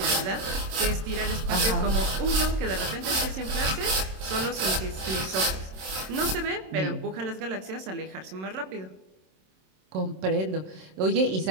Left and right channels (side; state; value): left; late; 27 ms